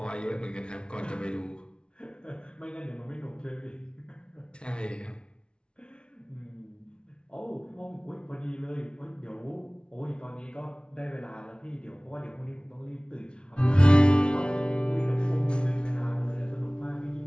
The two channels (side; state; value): right; late; 0.056 ms